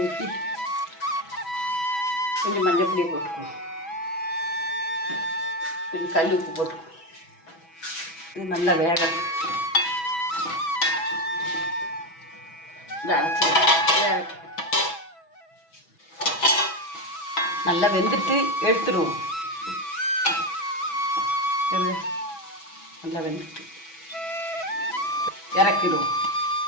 ஊற்றி கொஞ்சம் மஞ்சள் பொடியை போட்டுக்குவோம். கொஞ்சம் கல் உப்பு போட்டுக்குவோம். இது நல்லா வேகணும். நல்லா வெந்துட்டு எடுத்துருவோம். நல்லா வெந்துட்டு இறக்கிடுவோம்.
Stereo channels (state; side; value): late; right; 6.1 ms